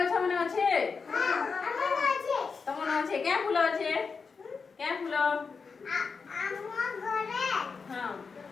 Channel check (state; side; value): quieter; right; 5.1 dB